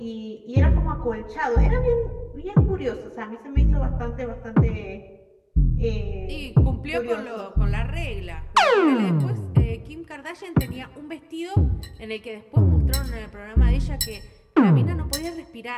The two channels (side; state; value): both; identical; correlation 1.00